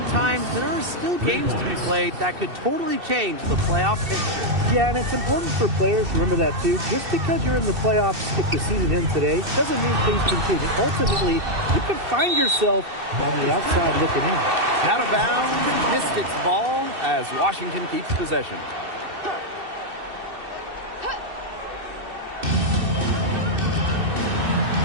time, there are still games to be played that could totally change the playoff picture. Yeah, and it's important for players to remember that, too. Just because you're in the playoffs, if the season ends today, doesn't mean things can change. And ultimately, you can find yourself on the outside looking in. Out of bounds, Mystics ball as Washington keeps possession.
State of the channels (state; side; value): late; left; 2.7 ms